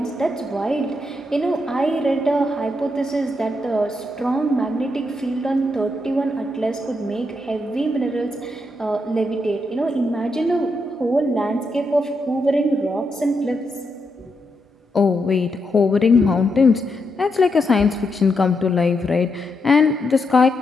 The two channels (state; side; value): normal; both; correlation 0.82